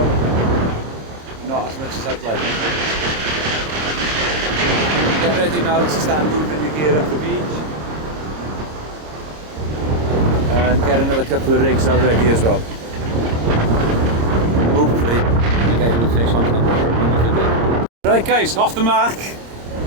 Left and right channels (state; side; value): late; left; 26 ms